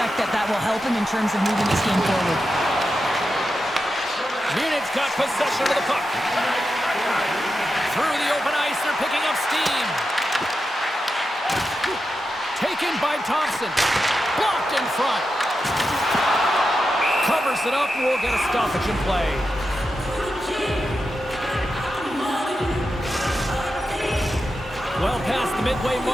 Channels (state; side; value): normal; both; correlation 0.89